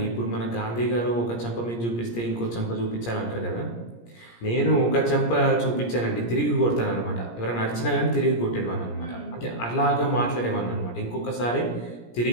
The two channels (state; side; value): late; right; 17 ms